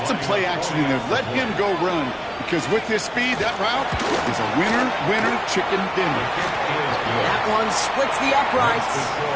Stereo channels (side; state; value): both; identical; correlation 1.00